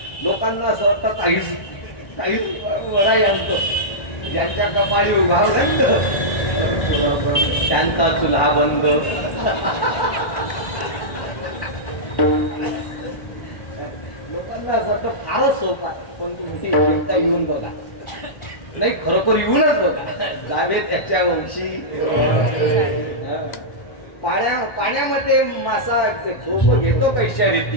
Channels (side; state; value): right; late; 1.1 ms